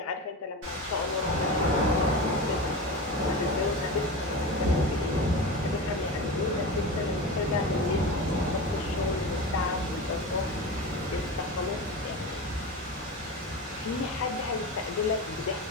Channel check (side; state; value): both; normal; correlation 0.26